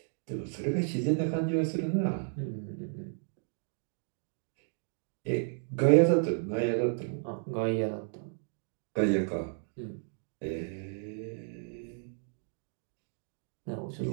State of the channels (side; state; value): left; silent; 56 dB below the other